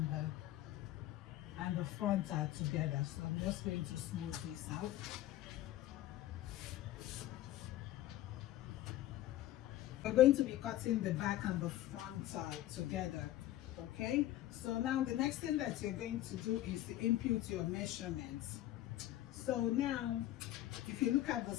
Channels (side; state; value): right; quieter; 14.3 dB